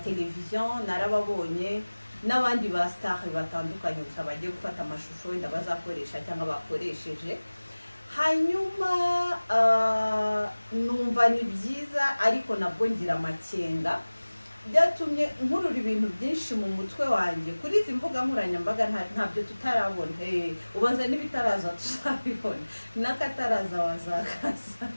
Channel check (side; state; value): both; inverted; correlation -1.00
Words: narababonye, n'abandi ba star batandukanye gusa bagiye gufata amashusho wenda bazakoresha cyangwa bakoresheje. Hanyuma numva ni byiza, ariko nabwo ngira amakenga, byatumye nkurura ibintu byinshi mu mutwe wanjye kuri izi mbuga nkoranyambaga. Ntabyo tutarabona, ubanza n'ibitaraza tuzabibona, n'akataraza wazakaza.